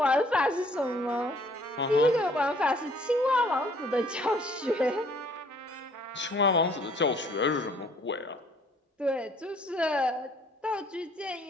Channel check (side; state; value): both; normal; correlation 0.60